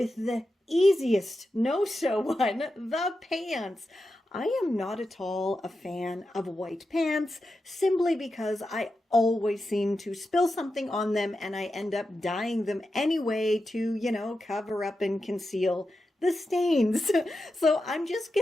the easiest no-sew one, the pants. I am not at all a fan of white pants simply because I always seem to spill something on them and I end up dyeing them anyway to, cover up and conceal the stains. So I'm just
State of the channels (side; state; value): both; normal; correlation 0.90